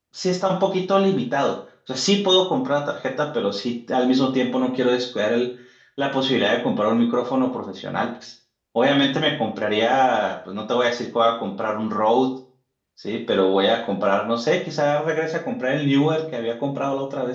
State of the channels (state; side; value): identical; both; correlation 1.00